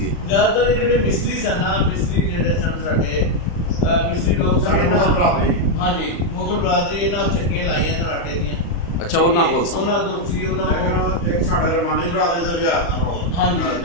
ਜ਼ਿਆਦਾਤਰ ਜਿਹੜੇ ਮਿਸਤਰੀ ਸਨ ਨਾ, ਮਿਸਤਰੀ ਜਿਹੜੇ ਸਨ ਸਾਡੇ ਮਿਸਤਰੀ ਲੋਕ ਸਨ ਇਹਨਾਂ। ਹਾਂਜੀ, ਮੁਗਲ ਬਰਾਦਰੀ ਇਹਨਾਂ ਚੱਕੀਆਂ ਲਾਈਆਂ ਸਨ ਆਟੇ ਦੀਆਂ। ਅੱਛਾ, ਉਹਨਾਂ ਕੋਲ ਸੀ। ਉਹਨਾਂ ਕੋਲ ਸੀ। ਉਹਨਾਂ ਕੋਲ ਇੱਕ ਸਾਡੇ ਰਮਾਨੀ ਬਰਾਦਰੀ ਦਾ ਵਿਆਹ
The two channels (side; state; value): right; late; 35 ms